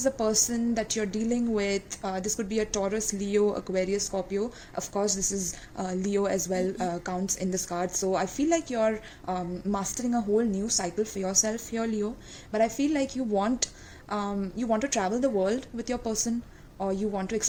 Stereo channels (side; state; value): both; identical; correlation 1.00